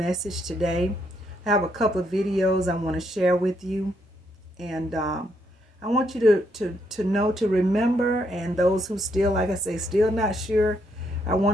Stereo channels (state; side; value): normal; both; correlation 0.75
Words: today. I have a couple of videos I want to share with you. And I want you to know, to remember, and those who still, like I say, still not sure, I